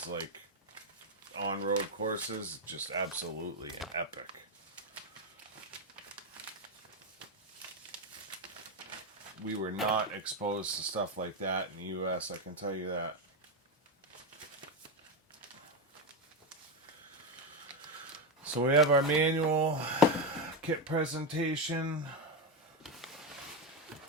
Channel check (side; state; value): both; normal; correlation 0.09